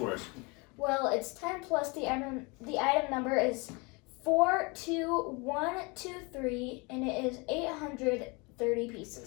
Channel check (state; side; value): quieter; right; 28.5 dB